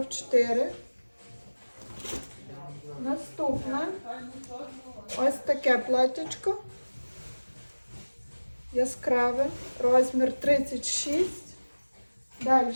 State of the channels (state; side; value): inverted; both; correlation -1.00